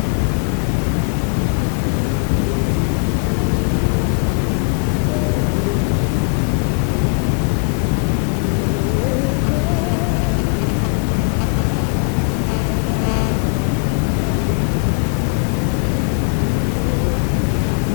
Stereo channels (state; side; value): quieter; right; 37.8 dB